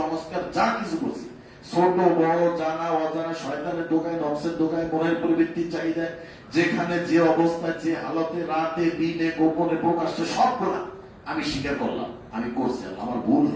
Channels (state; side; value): identical; both; correlation 1.00